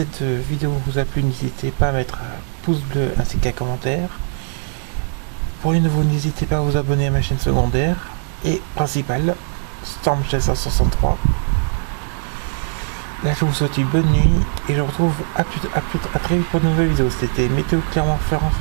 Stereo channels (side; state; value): left; silent; digital silence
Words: vidéo vous a plu, n'hésitez pas à mettre un pouce bleu ainsi qu'un commentaire. Pour les nouveaux, n'hésitez pas à vous abonner à ma chaîne secondaire et principale, Storm Chaser 63. Là je vous souhaite une bonne nuit et je vous retrouve à très vite pour de nouvelles vidéos. C'était Météo Clermont-Ferrand